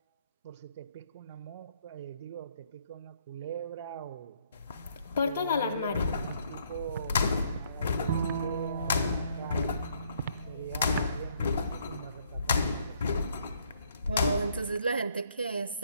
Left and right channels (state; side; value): inverted; both; correlation -0.67